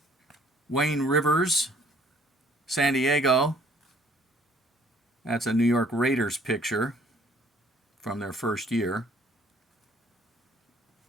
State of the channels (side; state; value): both; normal; correlation 0.60